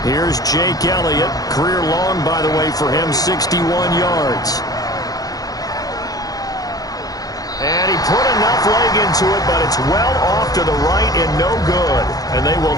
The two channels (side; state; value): right; late; 0.18 ms